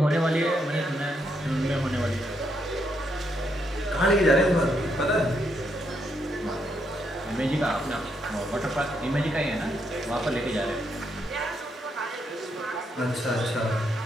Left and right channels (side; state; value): both; normal; correlation 0.77